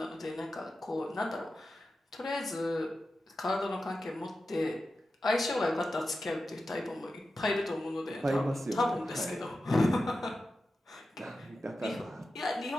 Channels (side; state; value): both; normal; correlation 0.92